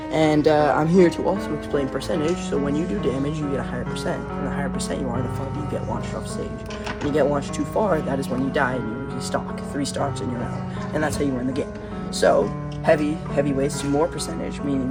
And I'm here to also explain percentage, so when you do damage, you get a higher percent. And the higher percent you are, the farther you get launched off stage. When you get launched too far, that is when you die and you stock. 3 stocks and you're out. And that's how you win the game. So, heavyweights do more percentage, meaning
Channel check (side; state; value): both; identical; correlation 1.00